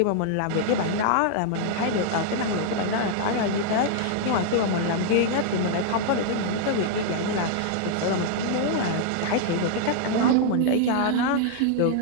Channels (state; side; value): different; both; correlation -0.01